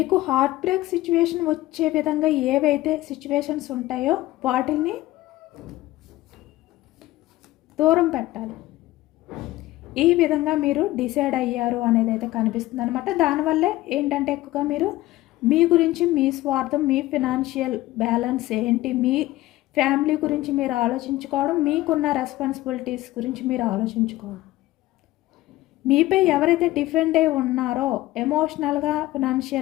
హార్ట్ బ్రేక్ సిచ్యువేషన్ వచ్చే విధంగా ఏవైతే సిచ్యువేషన్స్ ఉంటాయో వాటిని దూరం పెట్టాలి. ఈ విధంగా మీరు డిసైడ్ అయ్యారు అనేది అయితే కనిపిస్తుంది అనమాట. దానివల్లే ఏంటంటే ఎక్కువగా మీరు మీ గురించి, మీ స్వార్థం, మీ ఫినాన్షియల్ బ్యాలెన్స్ ఏంటి, మీ ఫ్యామిలీ గురించి మీరు ఆలోచించుకోవడం, మీకున్న రెస్పాన్సిబిలిటీస్ గురించి మీరు ఆలోచించుకోవడం, మీపై ఎవరైతే డిఫెండ్ అయి ఉన్నారో ఎమోషనల్గా,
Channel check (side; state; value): right; quieter; 17.0 dB